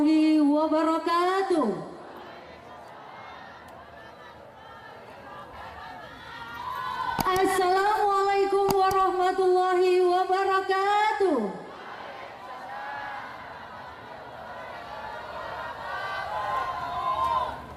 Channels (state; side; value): identical; both; correlation 1.00